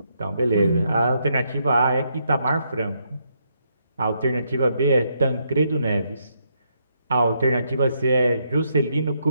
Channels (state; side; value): inverted; both; correlation -0.77